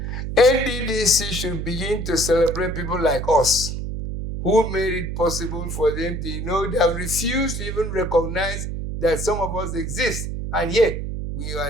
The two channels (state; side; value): noise; right; hum, 4 dB below the sound